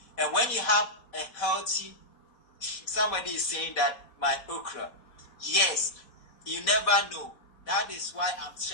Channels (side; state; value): right; late; 4.0 ms